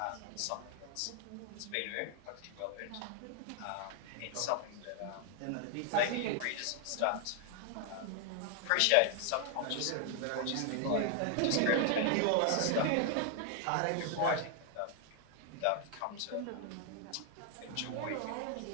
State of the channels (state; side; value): different; both; correlation 0.00